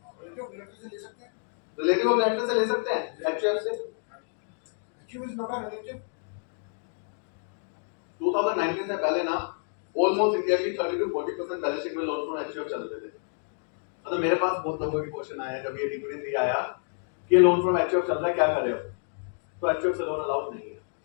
रिलेटिव ऑफ डायरेक्टर से ले सकते हैं, एचएफ से। 2019 से पहले ना ऑलमोस्ट इंडिया की 30 to 40% बैलेंस शीट में लोन फ्रॉम एचएफ चलते थे। मतलब मेरे पास बहुत लोगों के क्वेश्चन आए जब ये डीपीटी 3 आया कि लोन फ्रॉम एचएफ चल रहा है, क्या करें अब? तो एचएफ से लोन अलाउड नहीं है।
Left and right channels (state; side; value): silent; right; 59 dB below the other